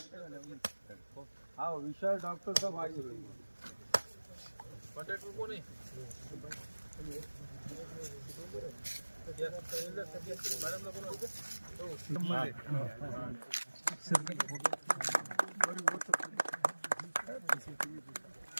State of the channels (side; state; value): both; inverted; correlation -1.00